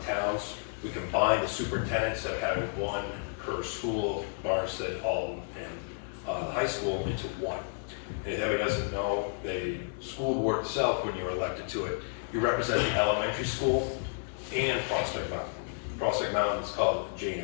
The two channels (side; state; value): right; silent; digital silence